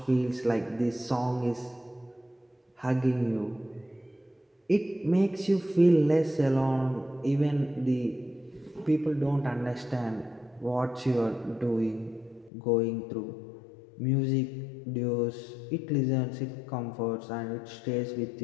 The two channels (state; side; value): drops out; right; at 12.5 s